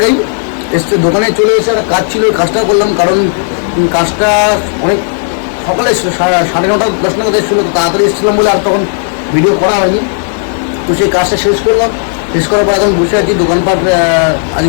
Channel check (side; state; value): right; silent; digital silence